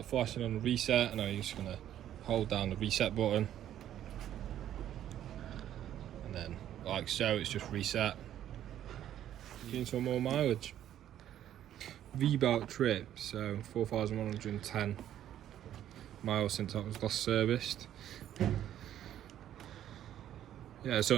flashing on the reset, and I'm just going to hold down the reset button. And then like so, it's just reset. Getting some more mileage. V-belt trip, so 4,110 miles since that was last serviced. Yeah, it's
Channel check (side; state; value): left; quieter; 11.3 dB